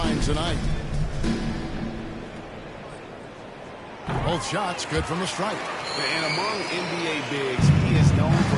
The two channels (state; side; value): identical; both; correlation 1.00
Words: tonight. Both shots good from the stripe. And among NBA bigs, he is known